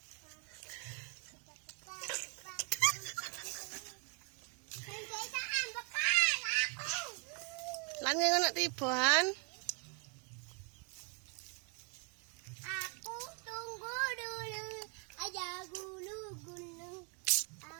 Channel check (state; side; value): quieter; left; 38.0 dB